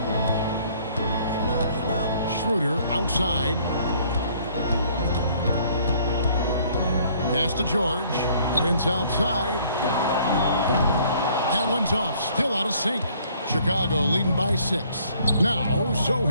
Schroeder outside. Pass to George. Prince outside. That one's off. Still out of sync. Chicago leading by 6. Now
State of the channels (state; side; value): inverted; both; correlation -0.60